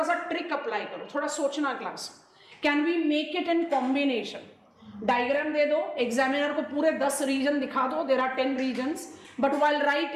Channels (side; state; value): both; identical; correlation 1.00